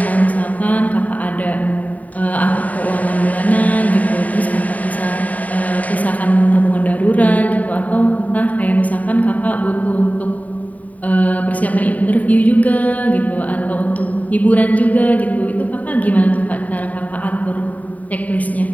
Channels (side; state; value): right; late; 0.072 ms